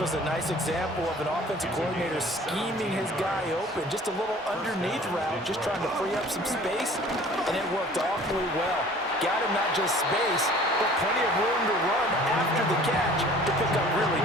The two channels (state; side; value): normal; both; correlation 0.49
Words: a nice example of an offensive coordinator scheming his guy open. Just a little underneath route, just trying to free up some space, and it worked awfully well. Got him not just space, but plenty of room to run after the catch to pick up really